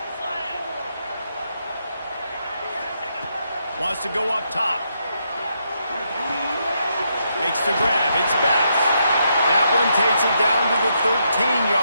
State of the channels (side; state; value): both; inverted; correlation -0.79